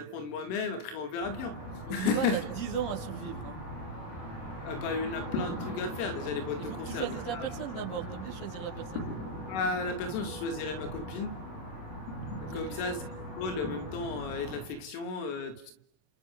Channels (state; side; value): late; right; 27 ms